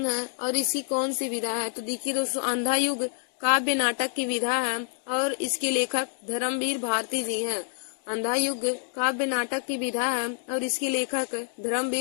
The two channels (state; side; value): silent; right; 58 dB below the other